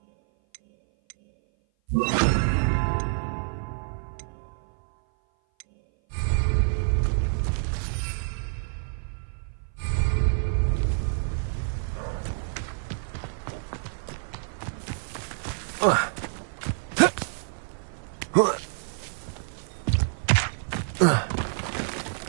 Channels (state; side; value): silent; left; 56 dB below the other